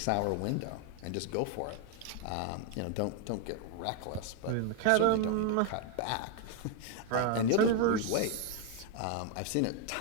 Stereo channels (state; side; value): different; both; correlation 0.01